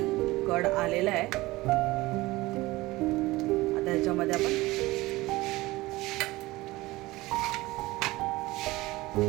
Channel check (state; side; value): quieter; left; 19.7 dB